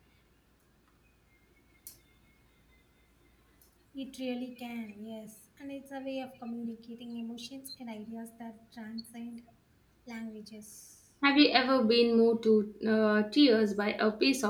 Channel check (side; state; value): both; identical; correlation 1.00